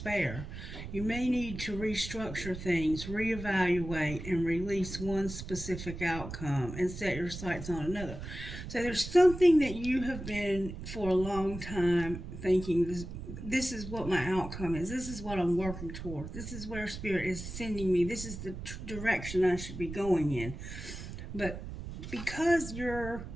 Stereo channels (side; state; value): right; noise; rumble, 9 dB below the sound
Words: You may need to restructure things, reevaluate, and release one specific outcome and set your sights on another. So there's something that you have been for a long time thinking this is what my outcome is. This is what I'm working toward. This is where spirit is sending me. This is the direction I should be going in. But because your